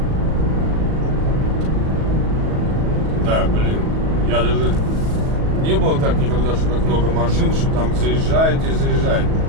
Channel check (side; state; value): left; late; 37 ms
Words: Да, блин, я даже не было так никогда, что так много машин, что там заезжают и заезжают.